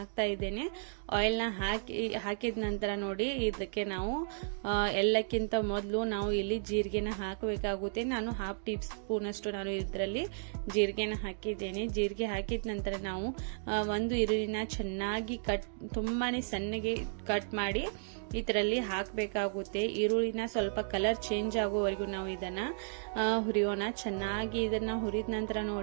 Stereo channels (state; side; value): silent; left; digital silence